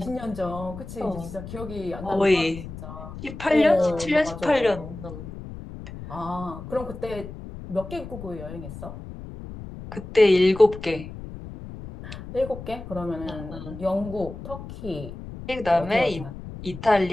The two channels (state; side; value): noise; left; rumble, 12 dB below the sound